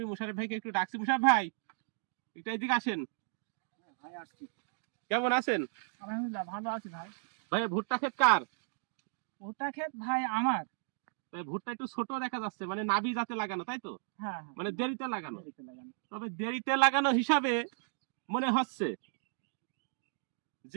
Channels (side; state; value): left; silent; digital silence